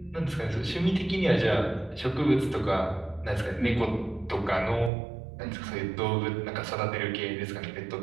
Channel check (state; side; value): drops out; left; at 4.9 s